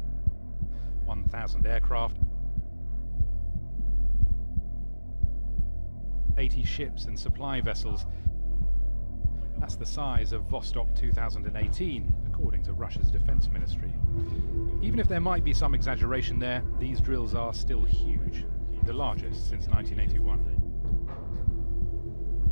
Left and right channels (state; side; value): inverted; both; correlation -1.00